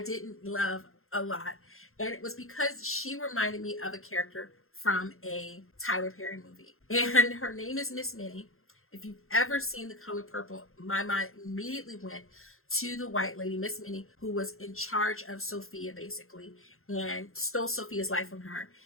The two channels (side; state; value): right; late; 0.62 ms